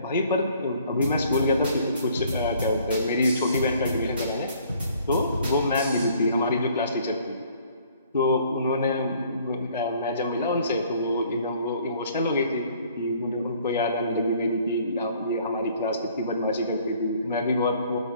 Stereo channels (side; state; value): both; inverted; correlation -0.59